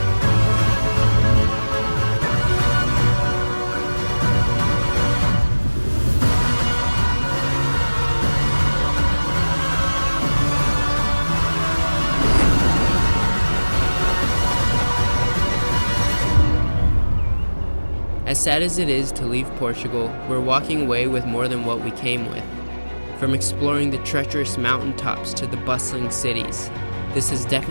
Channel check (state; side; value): inverted; both; correlation -1.00